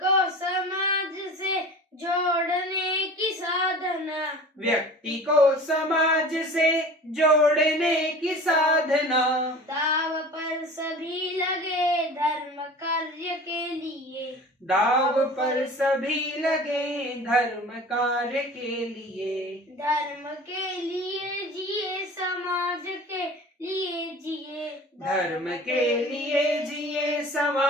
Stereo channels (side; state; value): both; normal; correlation 0.40